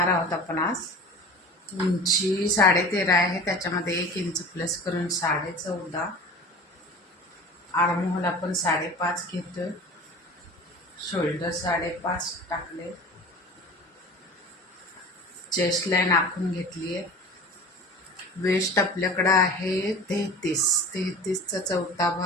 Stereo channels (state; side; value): normal; both; correlation 0.38